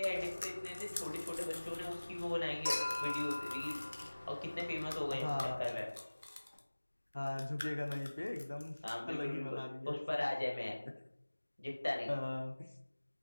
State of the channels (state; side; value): inverted; both; correlation -1.00